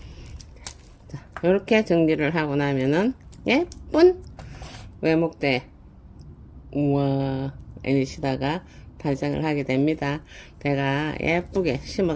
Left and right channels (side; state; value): both; identical; correlation 1.00